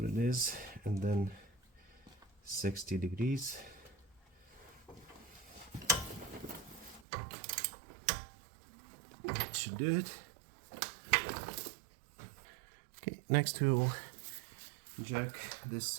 it is, and then 60 degrees. That should do it. Okay, next we'll jack this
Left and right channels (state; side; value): drops out; left; at 7.1 s